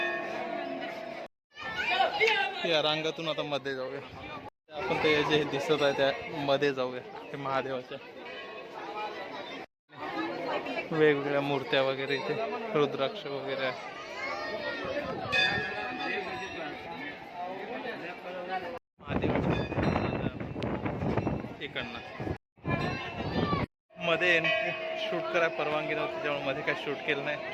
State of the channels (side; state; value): both; identical; correlation 1.00